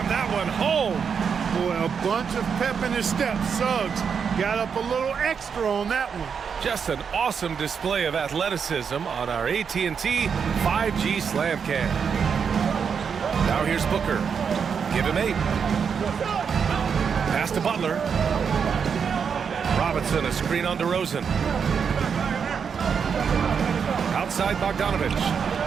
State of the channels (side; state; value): left; quieter; 6.6 dB